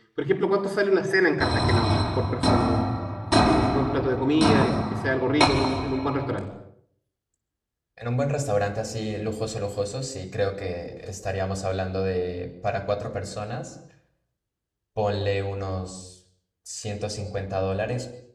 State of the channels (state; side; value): identical; both; correlation 1.00